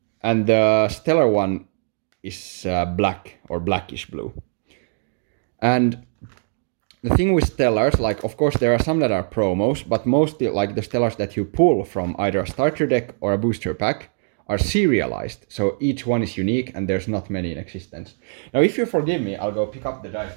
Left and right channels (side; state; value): left; silent; digital silence